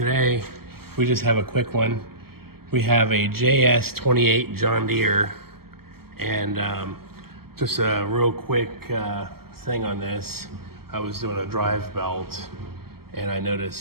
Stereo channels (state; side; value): late; left; 0.95 ms